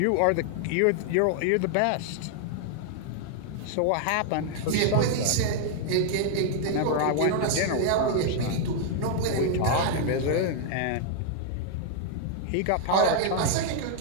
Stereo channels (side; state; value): both; different; correlation 0.00